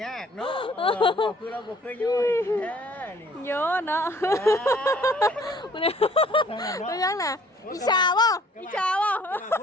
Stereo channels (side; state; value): both; normal; correlation 0.57